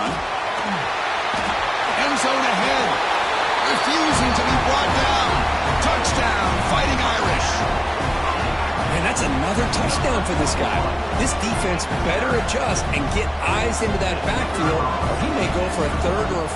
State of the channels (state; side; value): identical; both; correlation 1.00